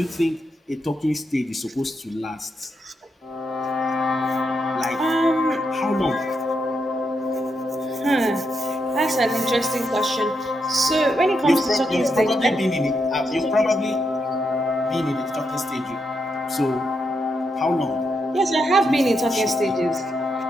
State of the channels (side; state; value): both; normal; correlation 0.82